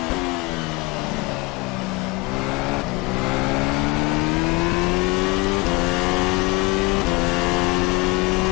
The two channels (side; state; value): right; quieter; 23.5 dB